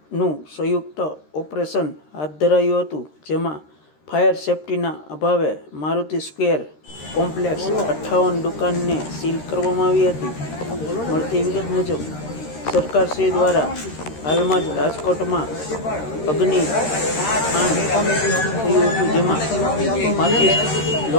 સંયુક્ત ઓપરેશન હાથ ધરાયું હતું, જેમાં ફાયર સેફટીના અભાવે મારુતિ સ્ક્વેર કોમ્પ્લેક્સ 58 દુકાનને સીલ કરવામાં આવી હતી. મળતી વિગત મુજબ સરકારશ્રી દ્વારા હાલમાં જ રાજકોટમાં અગ્નિકાંડ થયું હતું, જેમાં 35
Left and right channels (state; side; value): late; right; 13 ms